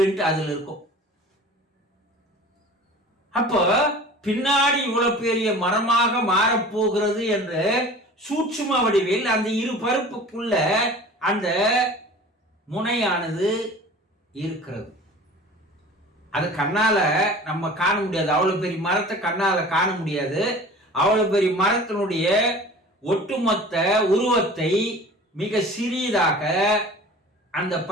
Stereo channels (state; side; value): normal; both; correlation 0.42